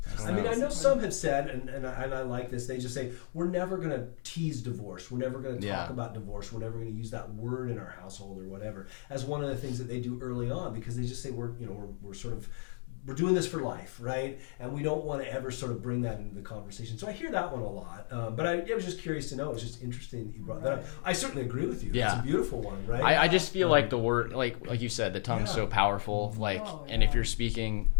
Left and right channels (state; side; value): silent; right; digital silence